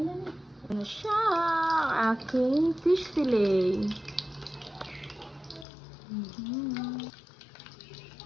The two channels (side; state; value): right; drops out; at 5.7 s